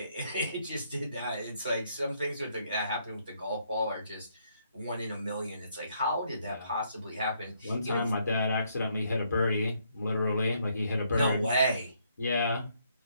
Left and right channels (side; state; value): both; inverted; correlation -0.71